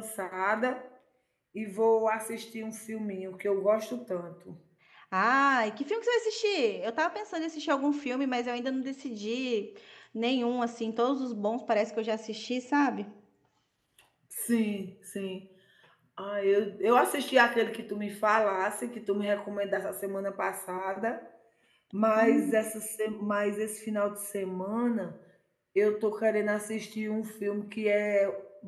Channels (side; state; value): both; identical; correlation 1.00